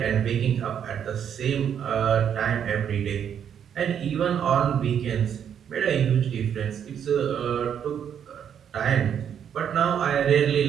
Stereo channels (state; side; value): quieter; left; 8.6 dB